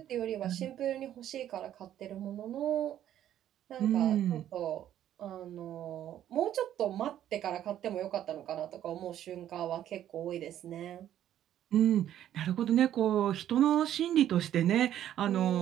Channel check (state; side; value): quieter; left; 11.4 dB